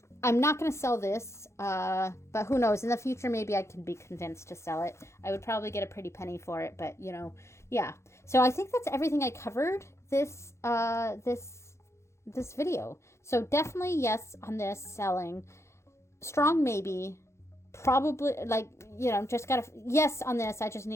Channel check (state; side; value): late; right; 0.13 ms